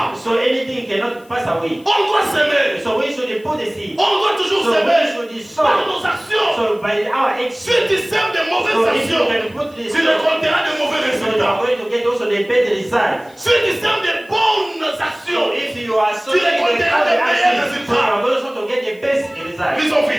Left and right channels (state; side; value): noise; left; hiss, 29 dB below the sound